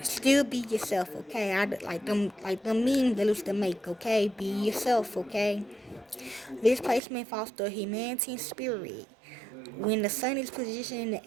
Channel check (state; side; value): drops out; left; at 7.0 s